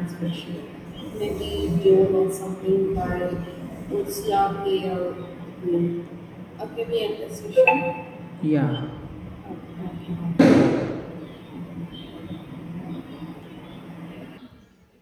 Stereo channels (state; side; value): identical; both; correlation 1.00